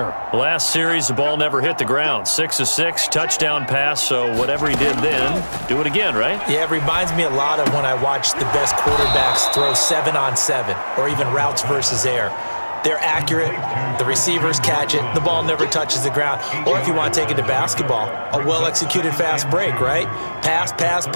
Last series, the ball never hit the ground. 6 of 6, touchdown pass, so whatever he did then, do it again, right? Yeah, it reminds me a lot of when I watch the best quarterbacks throw 7-on-7 or even routes versus air. They're accurate, the receivers catch it, the ball never touches the ground. Or if you want to take it to basketball, a well-executed fast break, right? Pass, pass,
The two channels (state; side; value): inverted; both; correlation -1.00